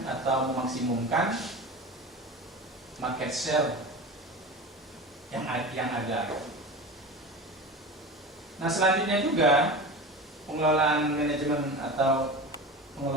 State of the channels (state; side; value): normal; both; correlation 0.31